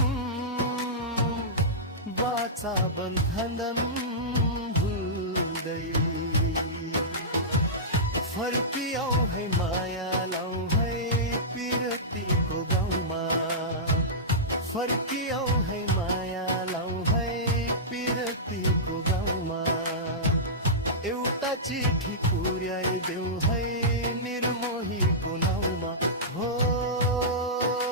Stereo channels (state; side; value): normal; both; correlation -0.15